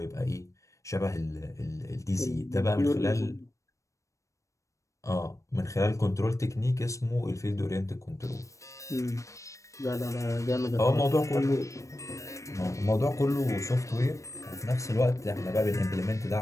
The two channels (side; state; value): right; late; 0.15 ms